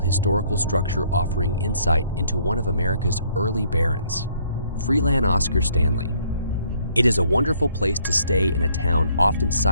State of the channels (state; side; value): inverted; both; correlation -0.65